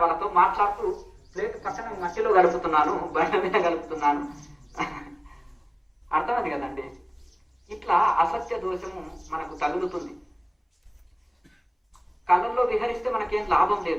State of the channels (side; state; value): both; identical; correlation 1.00